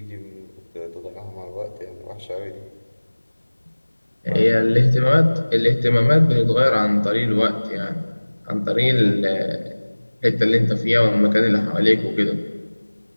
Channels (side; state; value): both; inverted; correlation -1.00